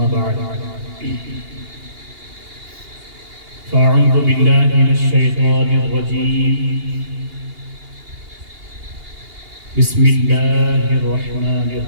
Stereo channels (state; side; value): late; left; 2.8 ms